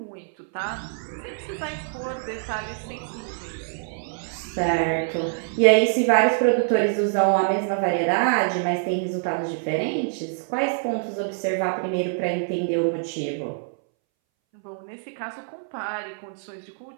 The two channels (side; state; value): left; silent; 62 dB below the other